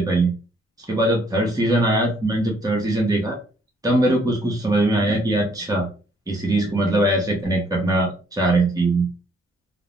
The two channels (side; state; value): both; normal; correlation 0.66